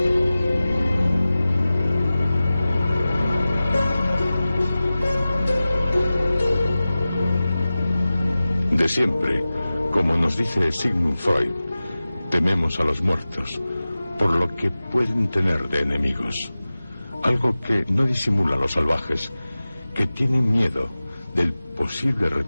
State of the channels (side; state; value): both; inverted; correlation -0.96